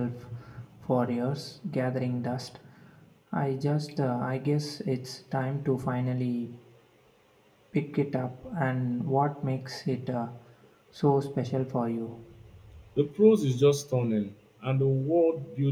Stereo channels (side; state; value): both; identical; correlation 1.00